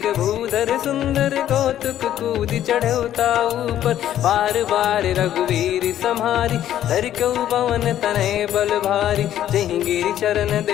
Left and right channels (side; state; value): right; quieter; 11.6 dB